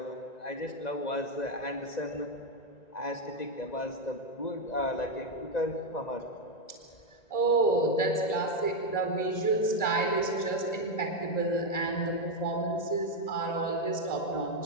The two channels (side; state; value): right; late; 1.9 ms